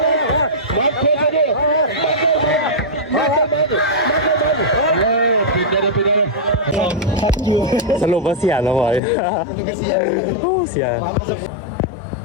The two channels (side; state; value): right; drops out; at 9.0 s